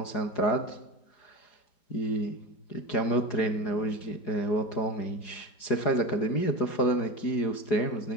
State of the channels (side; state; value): right; late; 4.8 ms